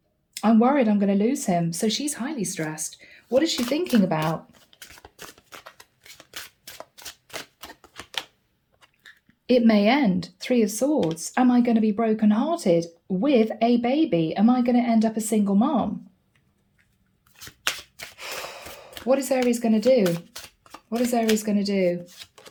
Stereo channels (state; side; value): identical; both; correlation 1.00